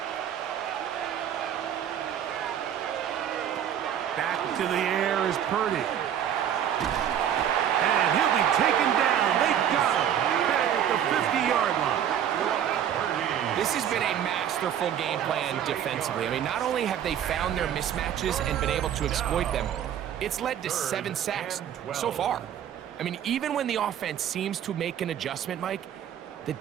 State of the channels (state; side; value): quieter; left; 9.7 dB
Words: Back to the air is Purdy. And he'll be taken down. They got him. Back at the 50-yard line. This has been a masterful game plan defensively. I mean, not only have they found their mismatches and been able to exploit them, it's led to 7 sacks so far. I mean, even when the offense seems to make an adjustment, Mike, the